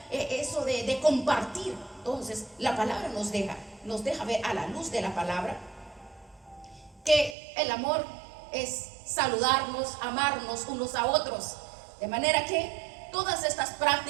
eso de compartir. Entonces la palabra nos deja ver, a la luz de la palabra, que el amor es saludarnos, amarnos unos a otros. De manera que todas estas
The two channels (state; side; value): drops out; left; at 7.4 s